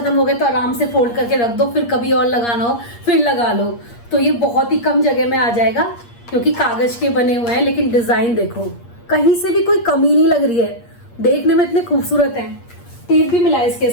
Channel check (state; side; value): late; right; 8.5 ms